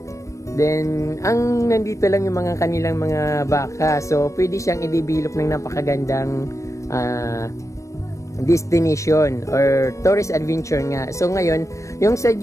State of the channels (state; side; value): late; right; 0.15 ms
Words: Then, nandito lang yung mga kanilang mga baka. So, pwede siyang i-develop ng napakagandang destination or tourist adventure nga. So, ngayon, yung